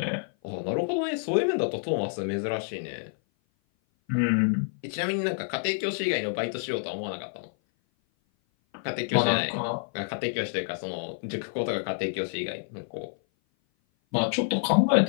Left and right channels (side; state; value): right; silent; 56 dB below the other